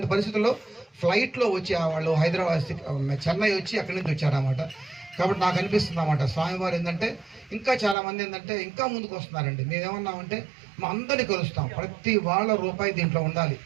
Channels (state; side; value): drops out; left; at 8.0 s